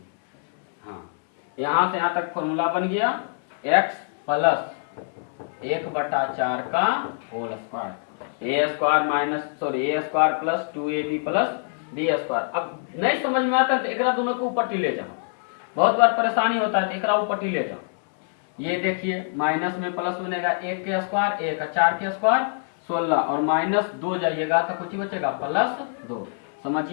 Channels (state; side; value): silent; right; 62 dB below the other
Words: हाँ, यहाँ से यहाँ तक फॉर्मूला बन गया, x प्लस 1 बटा 4 का whole square, A square minus sorry A square plus 2ab plus B square. अब नहीं समझ में आता है तो एक दोनों को ऊपर टी ले जाओ, बहुत बार परेशानी होता है, तो एक ऊपर टी ले जाओ। ये देखिए माइनस में प्लस बनेगा 1 के स्क्वायर, 1 4 के स्क्वायर 16, और माइनस 2 जाइएगा तो कुछ बचेगा प्लस 2।